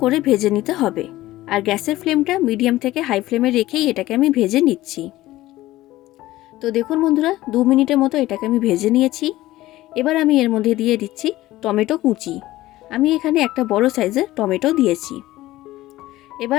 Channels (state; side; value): quieter; right; 16.5 dB